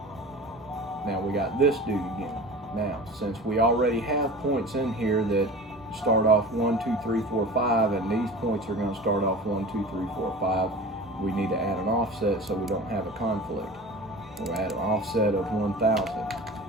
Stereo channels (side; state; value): both; normal; correlation 0.36